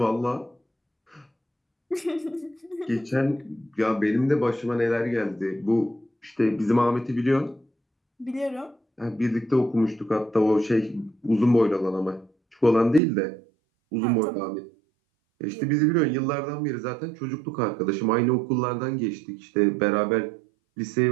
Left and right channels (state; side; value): drops out; left; at 13.0 s